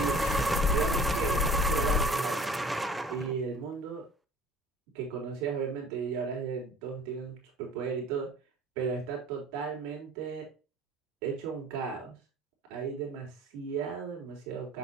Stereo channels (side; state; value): both; normal; correlation 0.47